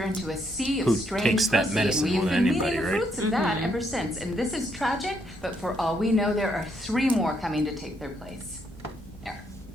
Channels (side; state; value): both; normal; correlation 0.74